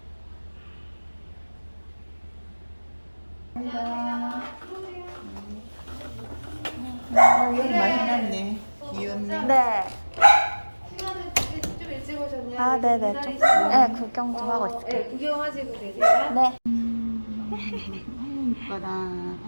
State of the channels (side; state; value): both; inverted; correlation -1.00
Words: 여기 많이 해놨네. 귀엽네. 네. 시간은 좀 일찍 오셨냐? 아 네네 좀. 네 구경 좀 하고 있을게요. 네, 구경하시고 계세요. 네. 이뻐라.